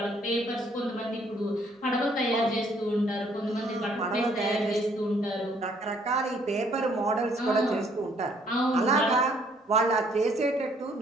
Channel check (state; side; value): normal; both; correlation 0.64